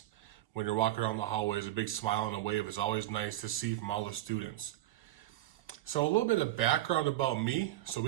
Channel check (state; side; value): quieter; left; 15.2 dB